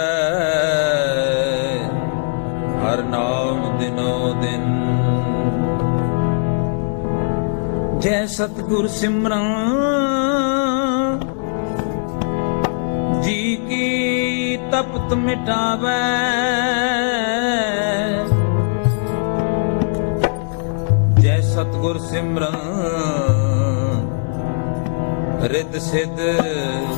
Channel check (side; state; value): right; silent; digital silence